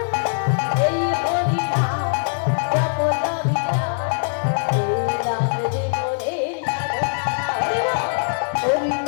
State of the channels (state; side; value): silent; right; digital silence